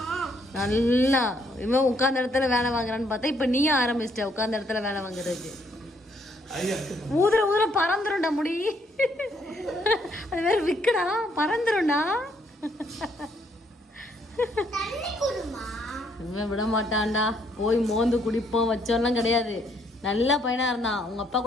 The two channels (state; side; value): normal; both; correlation 0.69